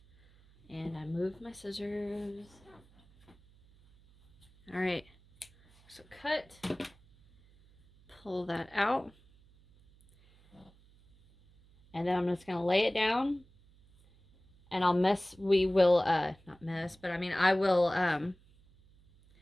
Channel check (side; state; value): right; noise; hum, 28 dB below the sound